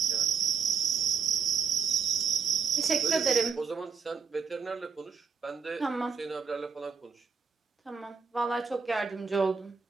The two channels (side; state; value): left; quieter; 5.8 dB